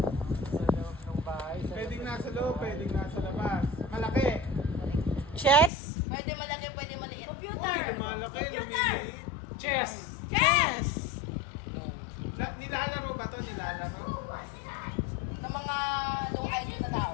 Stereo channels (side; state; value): right; drops out; at 5.7 s